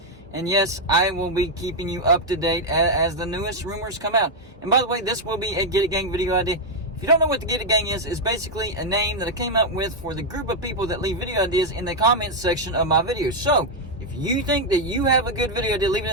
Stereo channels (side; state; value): both; normal; correlation 0.01